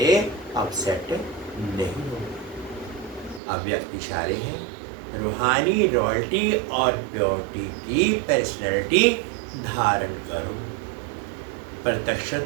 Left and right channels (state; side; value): drops out; left; at 3.4 s